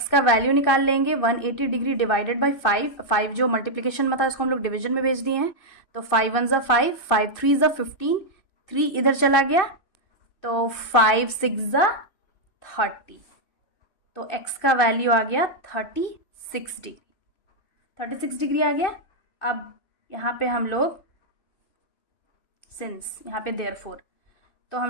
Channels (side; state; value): right; late; 2.6 ms